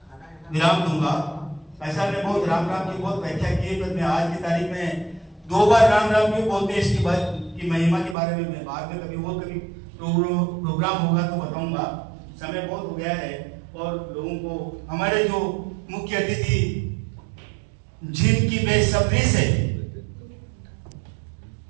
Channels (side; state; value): left; drops out; at 8.2 s